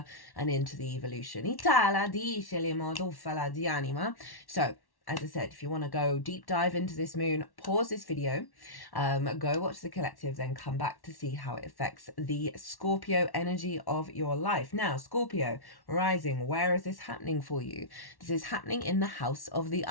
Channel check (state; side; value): late; right; 1.1 ms